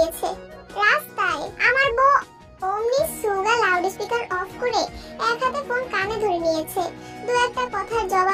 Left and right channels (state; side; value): identical; both; correlation 1.00